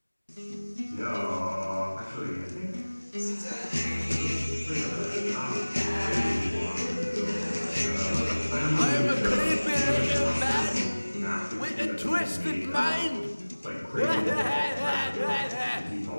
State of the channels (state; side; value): inverted; both; correlation -1.00